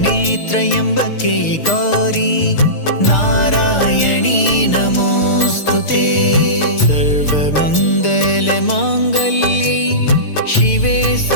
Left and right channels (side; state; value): right; late; 6.5 ms